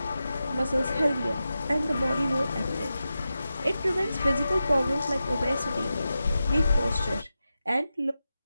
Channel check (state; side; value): inverted; both; correlation -0.92